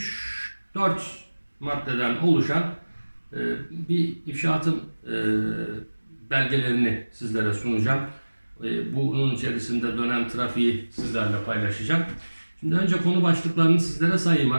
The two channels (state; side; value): inverted; both; correlation -1.00